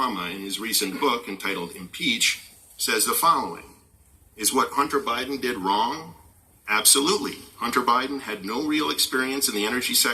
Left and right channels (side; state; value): both; identical; correlation 1.00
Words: in his recent book entitled Impeach, says the following: is what Hunter Biden did wrong? Absolutely. Hunter Biden had no real experience in the energy